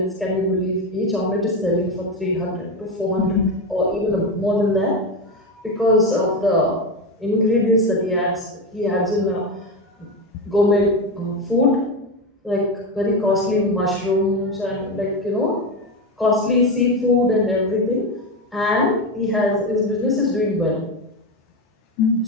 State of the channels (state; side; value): normal; both; correlation 0.15